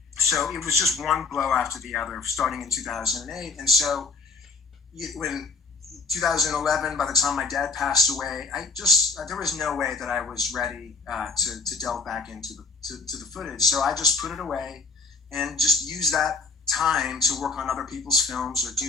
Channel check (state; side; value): quieter; right; 4.0 dB